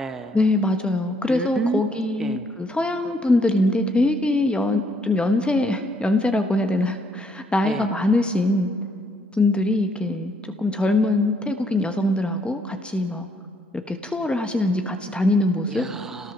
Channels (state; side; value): normal; both; correlation 0.70